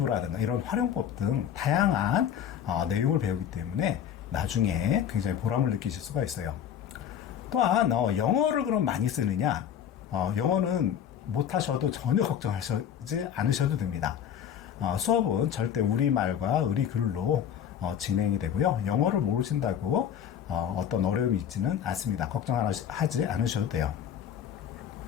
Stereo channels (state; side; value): quieter; right; 9.3 dB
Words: 이런 활용법 등 다양한 내용을 배우기 때문에 나중에 굉장히 보람을 느끼실 수가 있어요. 또한 영어를 그럼 많이 쓰느냐? 영어는 못하셔도 전혀 걱정하지 않으셔도 됩니다. 수업은 절대 우리말과 의리글로 진행이 되고요. 영어를 모르신다고 어떤 어려움이 있지는 않습니다. 걱정하지 않으셔도 돼요.